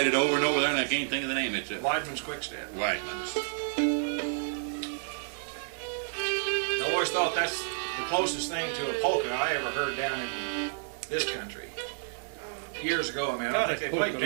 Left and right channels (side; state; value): left; silent; digital silence